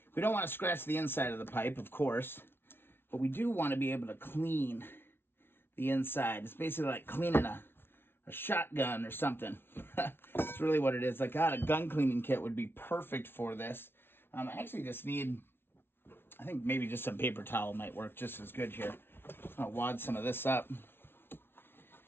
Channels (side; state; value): right; late; 0.11 ms